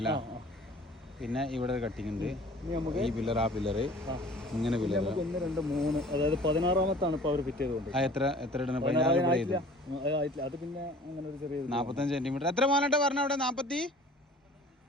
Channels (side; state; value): both; normal; correlation 0.48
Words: പിന്നെ ഇവിടെ ഒരു കട്ടിങ് ഉണ്ട്. ഈ പില്ലർ, ആ പില്ലറ്, ഇങ്ങനെ പില്ലർ 1, 2, 3, അതായത് 16-ാമത്താണ് ഇപ്പൊ അവർ ഫിറ്റ് ചെയ്തുകൊണ്ട്. എത്ര ഇടണം? 16 അത് പിന്നെ അങ്ങനെ ഒരു ചെറിയ 45 സെന്റിമീറ്റർ. എത്ര മോനട്ടെ പറഞ്ഞ അവിടെ? 45